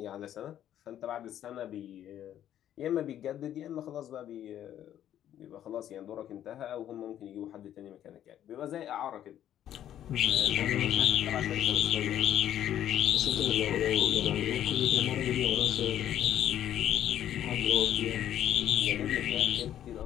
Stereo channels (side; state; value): right; quieter; 11.1 dB